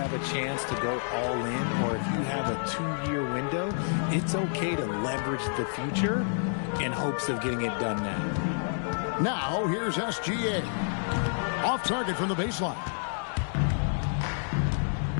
a chance to go all in, or if you have a 2-year window, it's okay to leverage the future in hopes of getting it done now. Now, here's SGA. Off target from the baseline.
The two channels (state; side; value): silent; right; digital silence